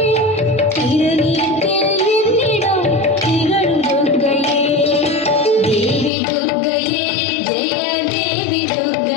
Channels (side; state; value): right; drops out; at 6.1 s